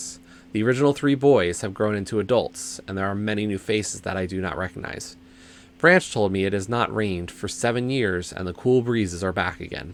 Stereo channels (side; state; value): both; identical; correlation 1.00